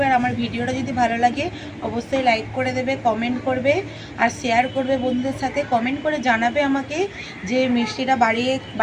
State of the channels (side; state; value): both; identical; correlation 1.00